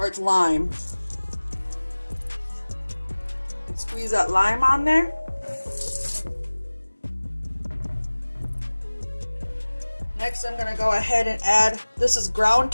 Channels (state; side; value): inverted; both; correlation -1.00